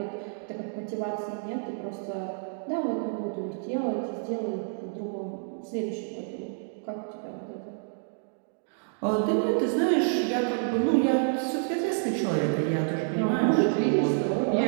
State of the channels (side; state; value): left; silent; digital silence